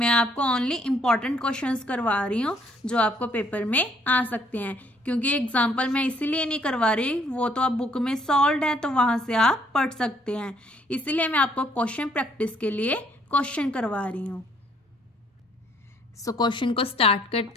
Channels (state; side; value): normal; both; correlation 0.65